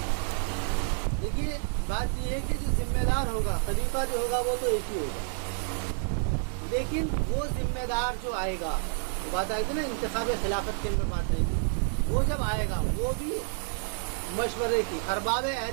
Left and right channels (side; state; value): left; silent; 58 dB below the other